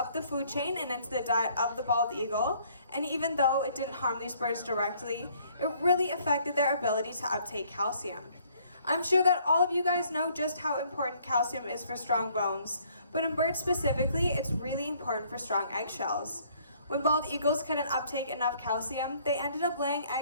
the food chain and into the diet of the bald eagle, and even though it didn't harm these birds directly, it really affected their ability to uptake calcium. I'm sure that all of you guys know just how important calcium is for strong bones, but in birds specifically, it's really important for strong eggshells. When bald eagles couldn't uptake enough calcium, they ended up laying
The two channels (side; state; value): both; inverted; correlation -0.62